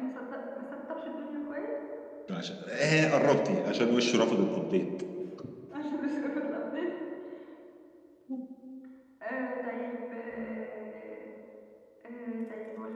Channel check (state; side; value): identical; both; correlation 1.00